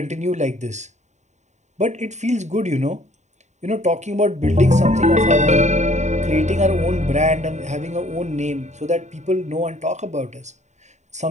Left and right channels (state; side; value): late; left; 0.34 ms